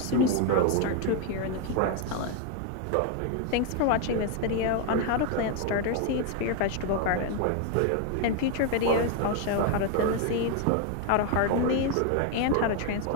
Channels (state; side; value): different; both; correlation 0.01